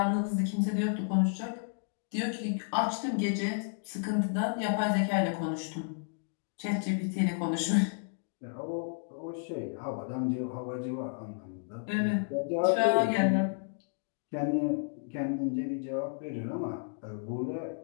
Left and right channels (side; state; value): right; silent; digital silence